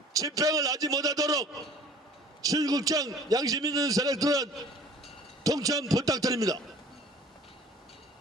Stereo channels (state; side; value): normal; both; correlation 0.49